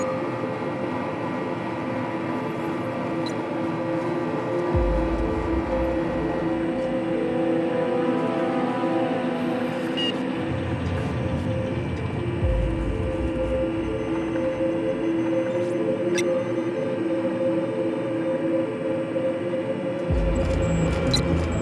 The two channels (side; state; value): both; identical; correlation 1.00